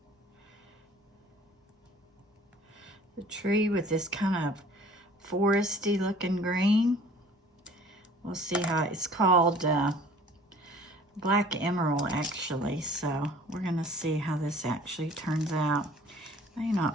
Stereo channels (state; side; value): normal; both; correlation 0.50